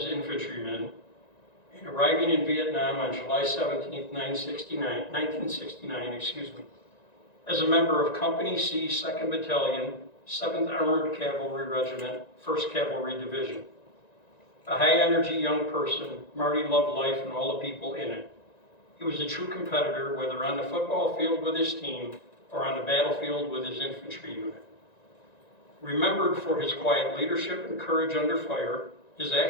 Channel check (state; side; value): late; right; 1.9 ms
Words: infantryman, and arriving in Vietnam on July 17, 1969, as a member of Company C, 2nd Battalion, 7th Armored Cavalry Regiment, 1st Cavalry Division. A high-energy young person, Marty loved life and all the people in it. He was a true competitor, whether on the football field with his team or on the battlefield with his infantry unit. Remembered for his quiet leadership and courage under fire, his